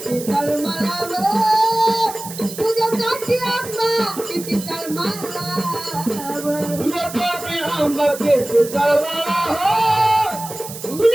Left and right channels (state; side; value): noise; right; hiss, 12 dB below the sound